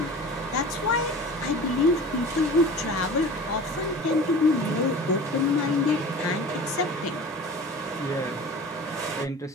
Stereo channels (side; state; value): both; normal; correlation 0.38